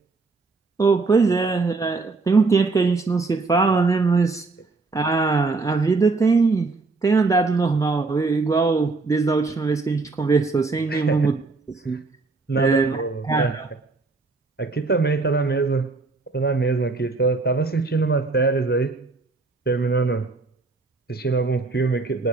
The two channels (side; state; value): left; quieter; 3.8 dB